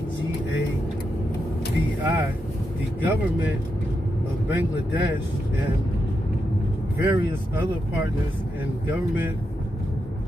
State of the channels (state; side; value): normal; both; correlation 0.85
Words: GAVI, the government of Bangladesh and various other partners in government,